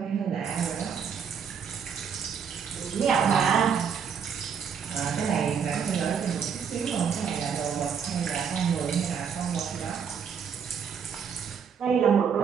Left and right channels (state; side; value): quieter; left; 7.0 dB